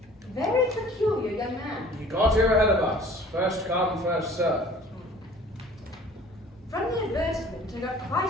very peculiar young man. He got here ahead of us. First come, first served. From the advertisement, I got quite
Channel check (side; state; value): both; normal; correlation 0.49